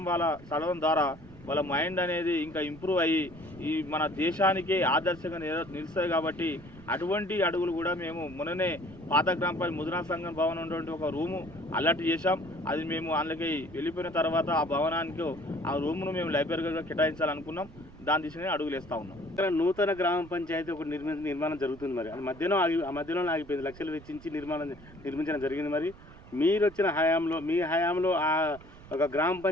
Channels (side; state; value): right; noise; rumble, 19 dB below the sound